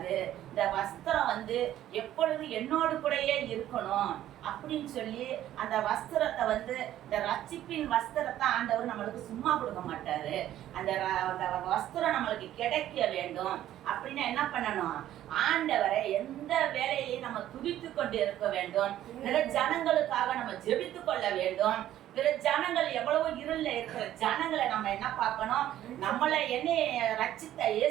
இந்த வஸ்திரம் வந்து எப்பொழுது என்னோடு கூடயே இருக்கணும் அப்படின்னு சொல்லி அந்த வஸ்திரத்தை வந்து, இந்த ரட்சிப்பின் வஸ்திரத்தை ஆண்டவர் நம்மளுக்கு சும்மா கொடுக்க மாட்டாரு. அந்த வஸ்திரம் நம்மளுக்கு கிடைக்க வேண்டும் அப்படின்னா என்ன பண்ணணும், ஆண்டவரை எந்த வேலையிலையும் நம்ம துதித்து கொண்டு இருக்க வேண்டும். பிற ஜனங்களுக்காக நம்ம ஜெபித்து கொள்ள வேண்டும். பிற ஜனங்கள் எவ்வளவோ இருள்ல இருக்கிற ஜனங்களை நம்ம என்ன பார்க்கணும், நம்மளை என்னை ரட்சித்த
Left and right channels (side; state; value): left; quieter; 12.6 dB